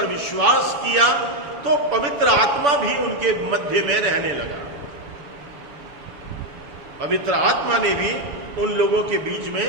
विश्वास किया, तो पवित्र आत्मा भी उनके मध्य में रहने लगा। पवित्र आत्मा ने भी उन लोगों के बीच में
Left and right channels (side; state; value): left; late; 7.0 ms